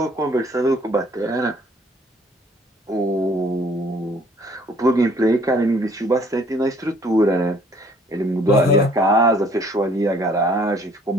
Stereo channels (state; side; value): normal; both; correlation 0.59